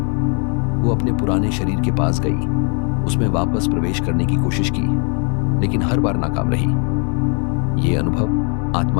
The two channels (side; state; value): right; quieter; 39.8 dB